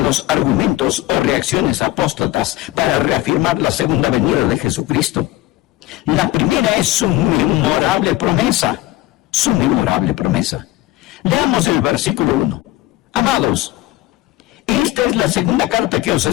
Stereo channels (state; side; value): quieter; right; 16.6 dB